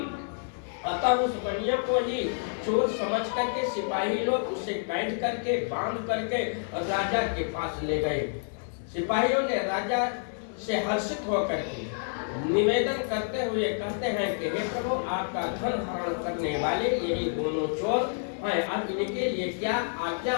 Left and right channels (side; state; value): right; silent; 59 dB below the other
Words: अतः उस बनिया को ही चोर समझ करके सिपाही लोग उसे कैद करके बांध करके राजा के पास ले गए। सिपाहियों ने राजा से हर्षित होकर के निवेदन करते हुए कहते हैं कि हे प्रभु, आपका धन हरण करने वाले यही दोनों चोर हैं, अब इनके लिए क्या आज्ञा